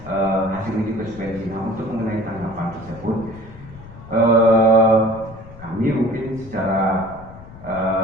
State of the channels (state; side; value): noise; left; rumble, 17 dB below the sound